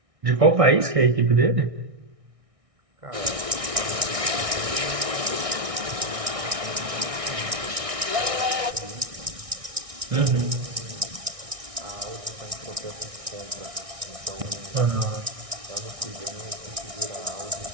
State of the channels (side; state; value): left; late; 1.6 ms